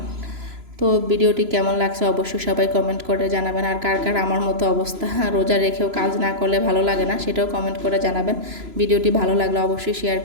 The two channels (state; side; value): late; left; 3.0 ms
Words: তো ভিডিওটি কেমন লাগছে অবশ্যই সবাই কমেন্ট করে জানাবেন। আর কার কার আমার মতো অবস্থা, রোজা রেখেও কাজ না করলে ভালো লাগে না, সেটাও কমেন্ট করে জানাবেন। ভিডিওটি ভালো লাগলে অবশ্যই শেয়ার